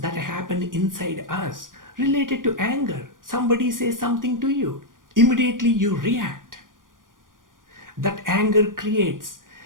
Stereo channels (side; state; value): left; late; 0.90 ms